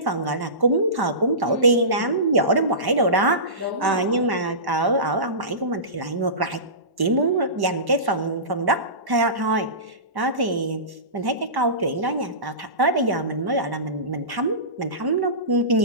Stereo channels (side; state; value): left; late; 1.1 ms